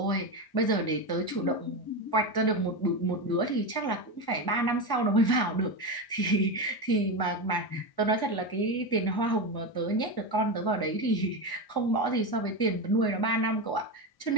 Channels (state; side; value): late; right; 1.1 ms